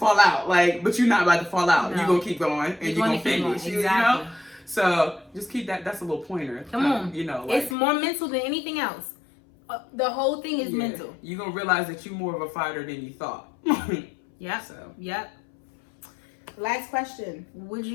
out. Like, but you're not about to fall out. No. You're going to keep going and you're going to finish. Exactly. You know? So just keep that. That's a little pointer. Come on. You know, like, it's more mental than anything else. The whole thing is mental. You're going to realize that you're more of a fighter than you thought. Yep. So. Yep. Last question. Would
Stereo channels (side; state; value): right; drops out; at 7.8 s